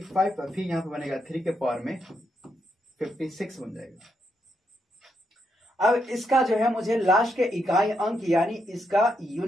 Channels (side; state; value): both; normal; correlation 0.80